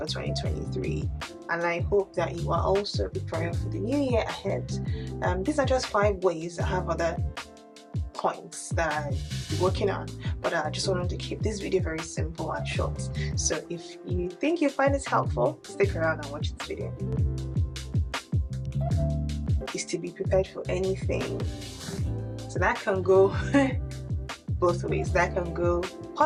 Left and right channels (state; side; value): identical; both; correlation 1.00